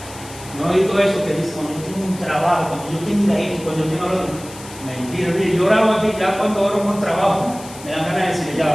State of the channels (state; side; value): noise; left; hiss, 17 dB below the sound